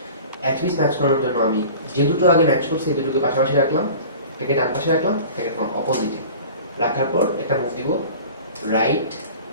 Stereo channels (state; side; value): inverted; both; correlation -0.40